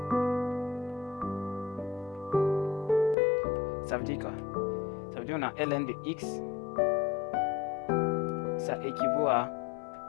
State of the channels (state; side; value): drops out; right; at 3.2 s